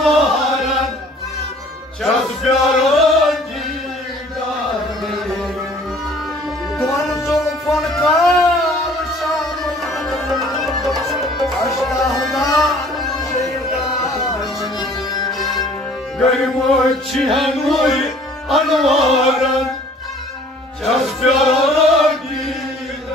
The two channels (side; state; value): both; normal; correlation 0.53